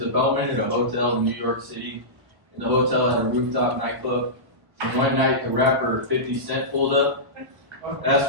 a bellman at a hotel in New York City. And the hotel had a rooftop nightclub. And one night the rapper 50 Cent pulled up.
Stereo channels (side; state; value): left; late; 1.0 ms